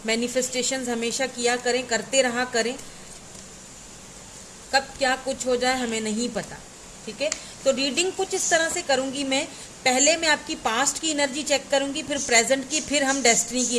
मैनिफेस्टेशंस हमेशा किया करें, करते रहा करें। कब क्या कुछ हो जाए हमें नहीं पता। ठीक है? तो रीडिंग कुछ इस तरह से करूंगी मैं। पहले मैं आपकी पास्ट की एनर्जी चेक करूंगी, फिर प्रेजेंट की, फिर हम डेस्टिनी की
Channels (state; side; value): identical; both; correlation 1.00